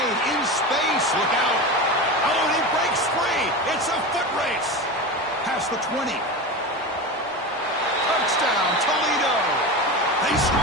in space. Look out. Oh, and he breaks free. It's a foot race. Past the 20. Touchdown, Toledo. They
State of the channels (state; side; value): normal; both; correlation 0.25